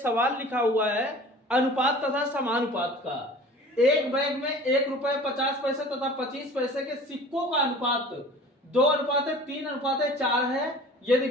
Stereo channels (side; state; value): both; normal; correlation 0.43